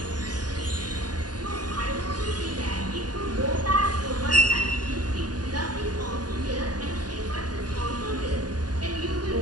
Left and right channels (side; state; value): left; late; 0.69 ms